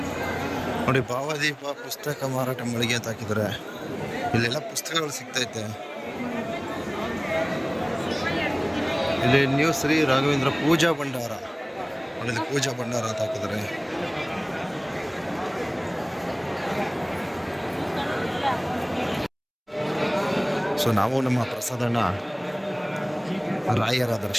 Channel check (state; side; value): identical; both; correlation 1.00